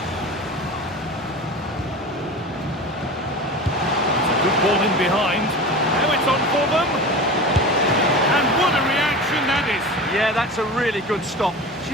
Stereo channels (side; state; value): both; normal; correlation 0.32